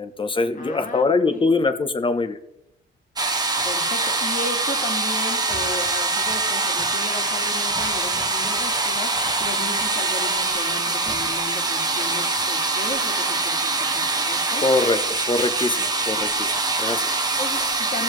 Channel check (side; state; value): both; normal; correlation 0.12